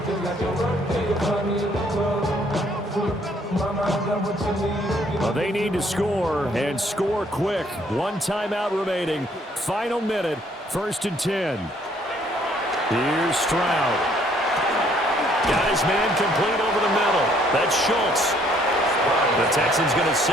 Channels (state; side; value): normal; both; correlation 0.64